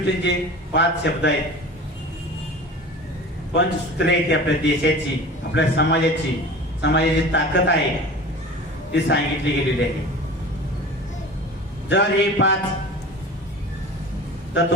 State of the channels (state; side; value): normal; both; correlation 0.37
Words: जे 5 शब्द आहेत, पंचसूत्रे आहेत आपल्या देशाची, आपल्या समाजाची ताकद आहे ती सांगितली गेलेली आहे. जर हे 5